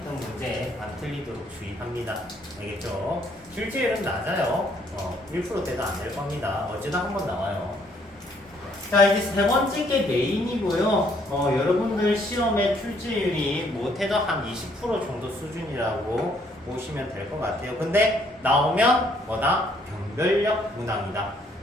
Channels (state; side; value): normal; both; correlation 0.67